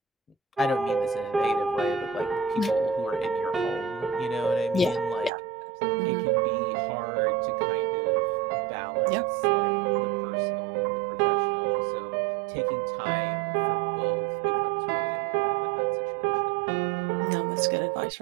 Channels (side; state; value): left; drops out; at 5.3 s